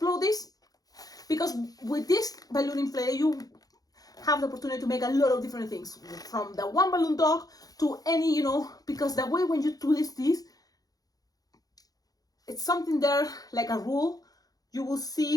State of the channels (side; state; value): right; late; 0.18 ms